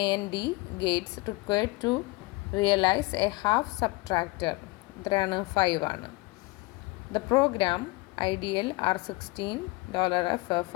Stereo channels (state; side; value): quieter; right; 23.1 dB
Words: gates required to realize a half subtractor എത്രയാണ്? 5 ആണ്. The program ideal R16 $FF